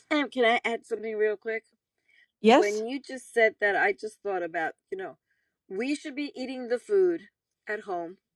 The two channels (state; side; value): identical; both; correlation 1.00